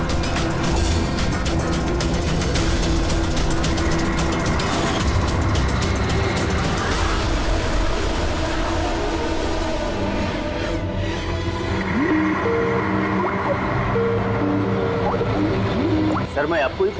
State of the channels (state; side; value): identical; both; correlation 1.00